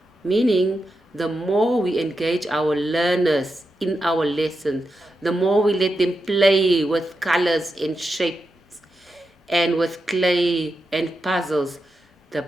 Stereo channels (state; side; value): normal; both; correlation 0.87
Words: Meaning, the more we engage our learners in our lesson, the more we let them play with colors and shapes and with clay and puzzles, the